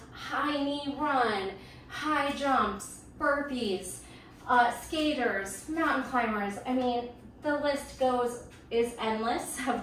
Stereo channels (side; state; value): both; identical; correlation 1.00